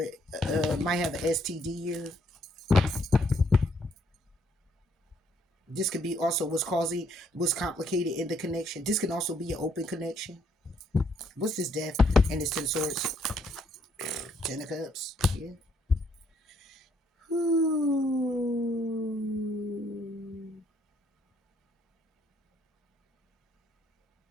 might have an STD here. This could be also what's complicated in the connection. This can also be an open connection. What's this death and this Ten of Swords? Ten of Cups. Yeah.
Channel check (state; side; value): normal; both; correlation 0.69